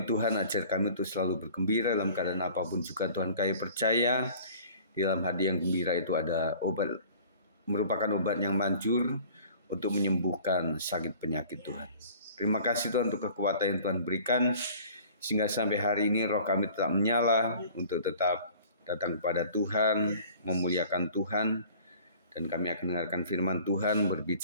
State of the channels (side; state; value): both; inverted; correlation -0.48